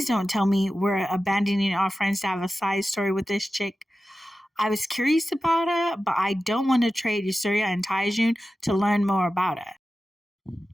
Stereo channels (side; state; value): both; normal; correlation 0.94